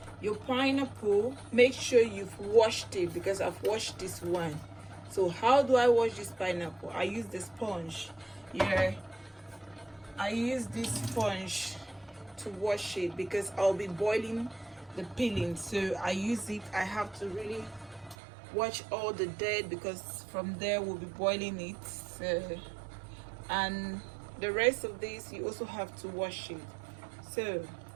your pineapple, make sure you've washed it, because I've washed this one. So how do I wash this pineapple? I use the sponge. I use this sponge to wash it because I'll be boiling the peeling. So I use it. I have to really wash all the dirt because from there we'll be boiling it. So, and the rest of this you also have to wash it. So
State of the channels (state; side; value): drops out; left; at 18.2 s